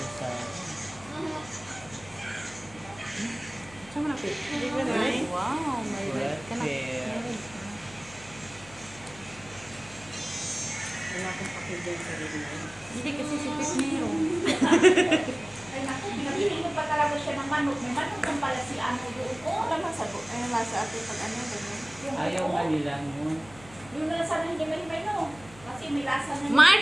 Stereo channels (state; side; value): noise; left; hum, 21 dB below the sound